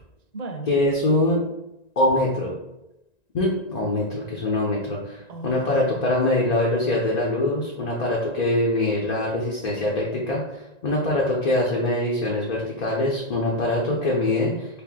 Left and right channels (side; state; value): right; late; 1.9 ms